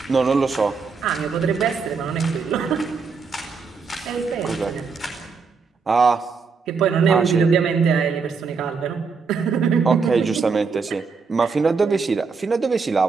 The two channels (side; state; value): left; quieter; 5.1 dB